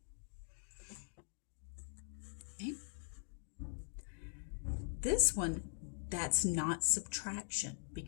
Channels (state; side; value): silent; right; digital silence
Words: Okay. This one, that's not subtraction